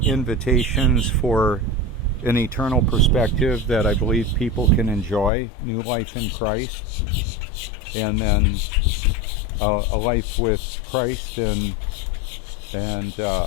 for an eternal perspective that I believe people can enjoy, new life in Christ, and then a life with Christ and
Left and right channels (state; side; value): drops out; right; at 5.3 s